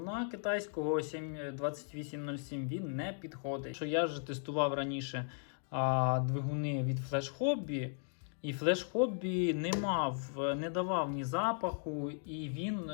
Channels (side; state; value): right; silent; 53 dB below the other